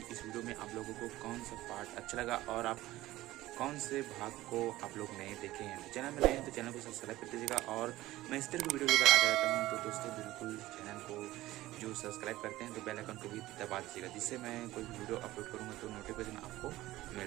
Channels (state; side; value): quieter; left; 16.6 dB